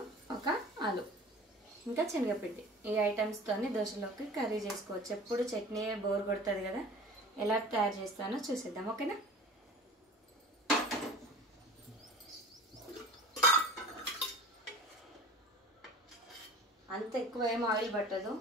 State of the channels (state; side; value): normal; both; correlation 0.41